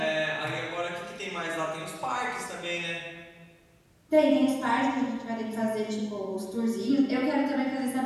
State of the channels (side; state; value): both; identical; correlation 1.00